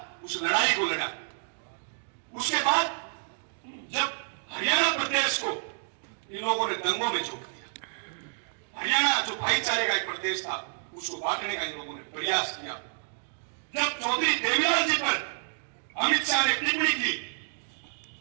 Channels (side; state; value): left; silent; digital silence